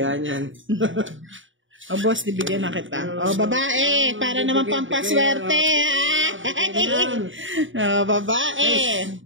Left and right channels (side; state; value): left; late; 0.56 ms